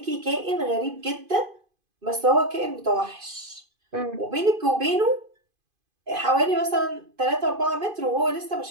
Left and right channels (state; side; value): late; left; 2.5 ms